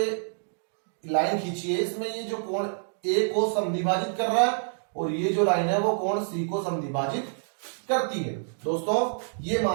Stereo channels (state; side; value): silent; left; digital silence